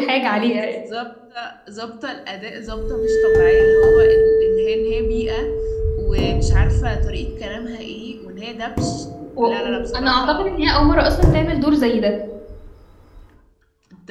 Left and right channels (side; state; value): both; identical; correlation 1.00